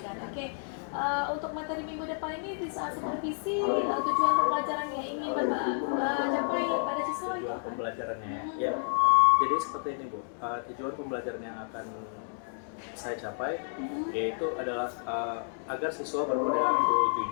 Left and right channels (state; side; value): silent; right; 57 dB below the other